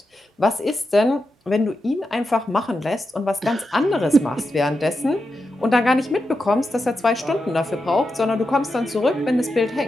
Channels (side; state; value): both; normal; correlation 0.88